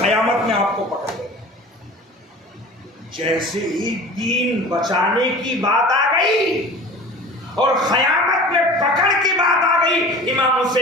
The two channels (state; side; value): normal; both; correlation 0.39